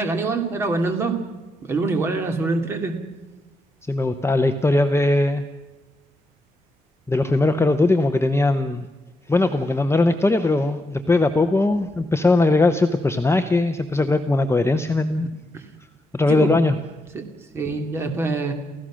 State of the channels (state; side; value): normal; both; correlation 0.83